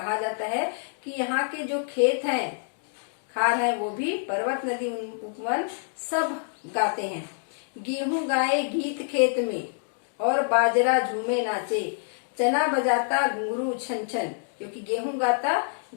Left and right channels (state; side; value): silent; right; digital silence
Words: जाता है कि यहाँ के जो खेत हैं, खार है, वो भी पर्वत, नदी, उपवन सब गाते हैं। गेहूं गाए गीत खेत में और बाजरा झूमे नाचे, चना बजाता घुंघरू छन छन। क्योंकि गेहूं गाता